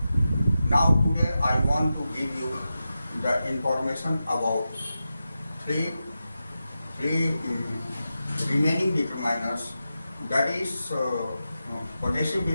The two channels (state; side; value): inverted; both; correlation -0.91